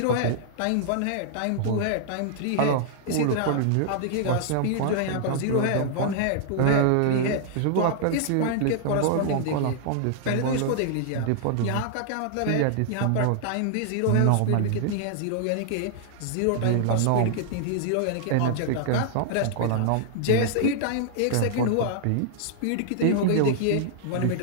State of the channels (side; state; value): both; different; correlation -0.01